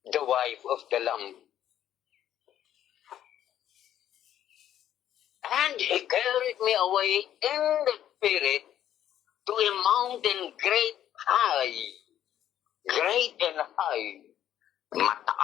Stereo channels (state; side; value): quieter; right; 11.1 dB